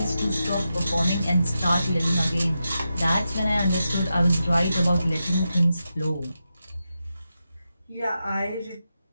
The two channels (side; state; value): both; inverted; correlation -0.89